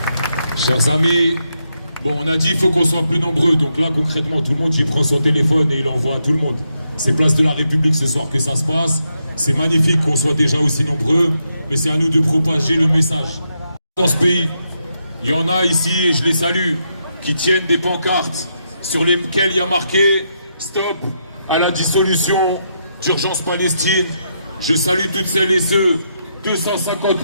Chers amis, bon, on a dit qu'il faut qu'on soit plus nombreux. Donc là, concrètement, tout le monde il prend son téléphone et il envoie à tout le monde. C'est place de la République ce soir que ça se passe. C'est magnifique qu'on soit déjà aussi nombreux, mais c'est à nous de propager le message. Dans ce pays, il y en a ici, et je les salue, qui tiennent des pancartes sur lesquelles il y a marqué « Stop à la dissolution d'Urgence Palestine ». Je salue toutes celles et ceux, 250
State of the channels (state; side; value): inverted; both; correlation -0.81